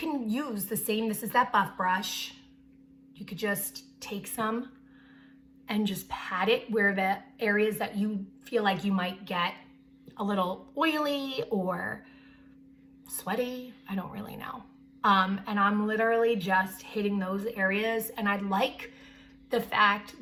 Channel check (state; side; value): identical; both; correlation 1.00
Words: use the same, this is that buff brush. You could just take some and just pat it where the areas that you feel like you might get a little oily or sweaty. I don't really know. And I'm literally just hitting those areas. And I like the fact